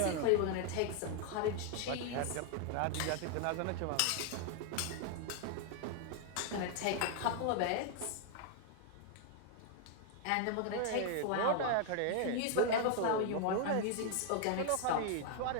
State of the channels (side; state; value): both; different; correlation 0.00